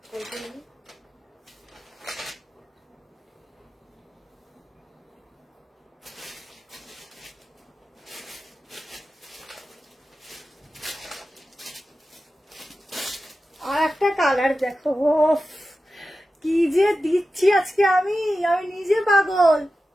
কল করে নিই। আর একটা কালার দেখো, ওফ কি যে দিচ্ছি আজকে আমি নিজে পাগল।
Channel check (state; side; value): normal; both; correlation 0.93